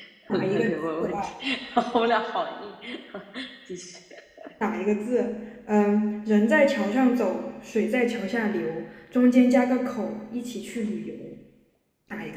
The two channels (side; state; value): both; identical; correlation 1.00